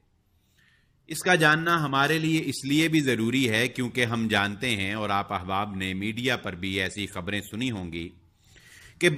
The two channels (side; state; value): both; identical; correlation 1.00